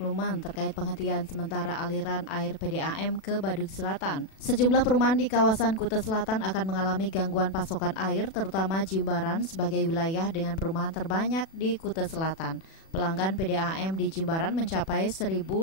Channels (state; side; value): late; right; 36 ms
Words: terkait penghentian sementara aliran air PDAM ke Badung Selatan. Sejumlah perumahan di kawasan Kuta Selatan akan mengalami gangguan pasokan air, terutama Jimbaran sebagai wilayah dengan perumahan terbanyak di Kuta Selatan. Pelanggan PDAM di Jimbaran mencapai 1.500